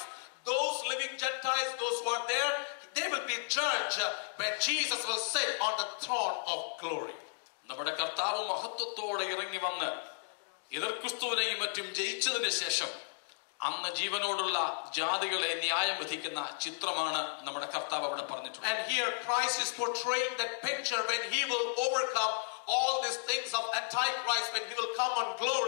those living Gentiles, those who are there, they will be judged when Jesus will sit on the throne of glory. നമ്മുടെ കർത്താവ് മഹത്വത്തോടെ ഇറങ്ങി വന്ന് എതിർ ക്രിസ്തുവിനെയും മറ്റും ജയിച്ചതിന് ശേഷം അന്ന് ജീവനോടുള്ള ജാതികളെ ന്യായം വിധിക്കുന്ന ചിത്രമാണ് നമ്മുടെ കർത്താവ് അവിടെ പറഞ്ഞിട്ടുള്ളത്. And here Christ is portraying that picture when he will overcome all these things of Antichrist, when he will come on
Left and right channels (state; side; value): silent; right; digital silence